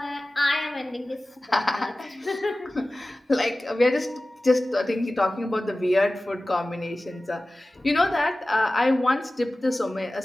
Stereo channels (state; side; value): normal; both; correlation 0.96